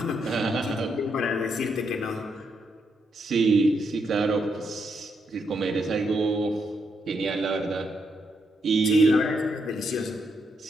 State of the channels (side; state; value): both; normal; correlation 0.79